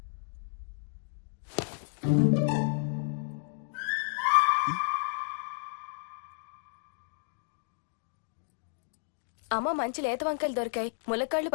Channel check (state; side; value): silent; right; digital silence